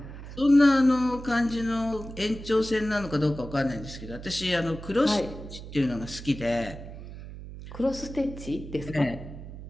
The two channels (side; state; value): right; noise; hum, 12 dB below the sound